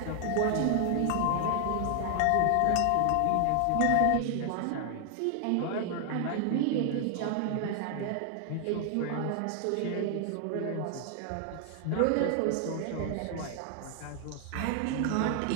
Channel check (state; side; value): different; both; correlation 0.00